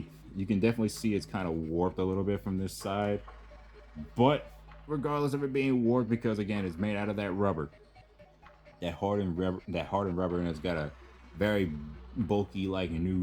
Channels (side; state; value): both; identical; correlation 1.00